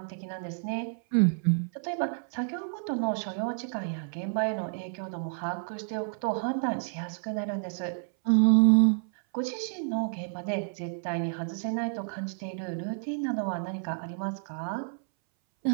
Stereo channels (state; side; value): silent; left; 58 dB below the other